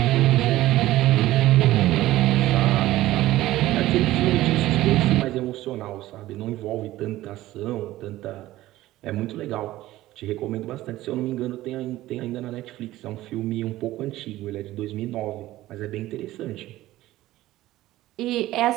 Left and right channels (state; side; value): quieter; left; 15.9 dB